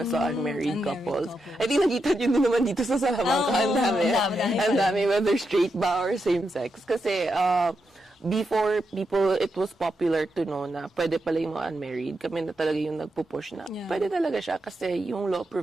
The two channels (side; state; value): both; normal; correlation 0.85